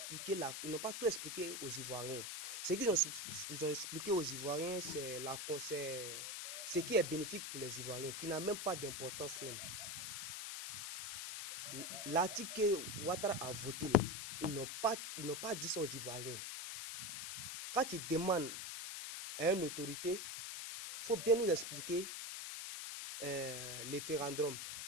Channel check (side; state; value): left; noise; hiss, 5 dB below the sound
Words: là, ils n'ont pas tout expliqué aux Ivoiriens. Ce qu'ils ont expliqué aux Ivoiriens, c'est ce qui est bénéfique pour les Ivoiriens, qui n'a même pas d'importance même. L'article que Ouattara a voté là, ils n'ont pas dit ça aux Ivoiriens. Quand ils demandent à une autorité, il faut bien nous expliquer les référendums,